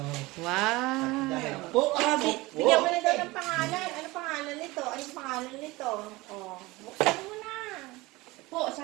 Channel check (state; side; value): quieter; left; 21.2 dB